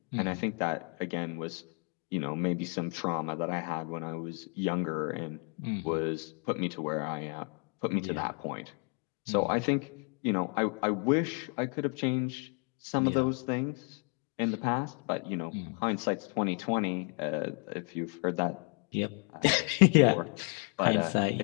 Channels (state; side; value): quieter; right; 38.7 dB